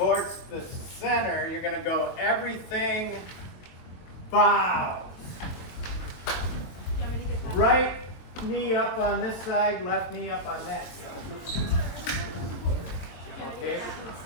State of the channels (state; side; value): late; right; 22 ms